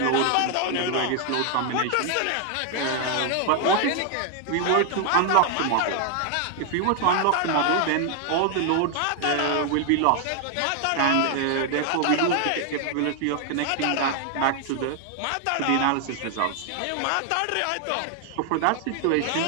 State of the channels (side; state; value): both; different; correlation 0.00